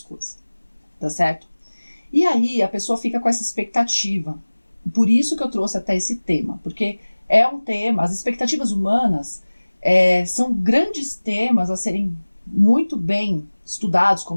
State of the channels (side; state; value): both; inverted; correlation -1.00